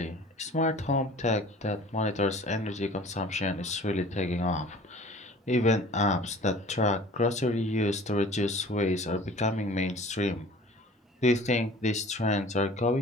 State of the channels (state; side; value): normal; both; correlation 0.46